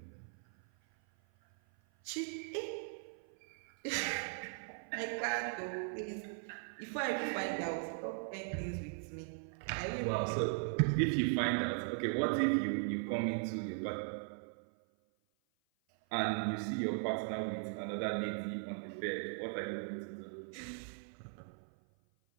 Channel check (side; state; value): left; silent; 52 dB below the other